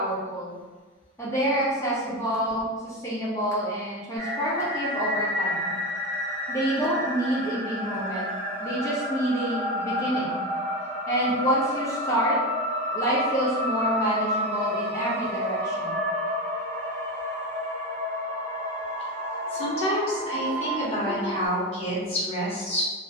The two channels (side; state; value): both; normal; correlation 0.17